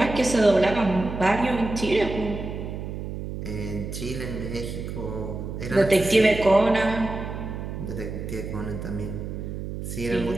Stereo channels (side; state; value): right; noise; hum, 7 dB below the sound